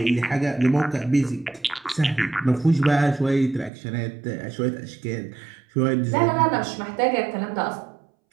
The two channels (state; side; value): drops out; left; at 3.7 s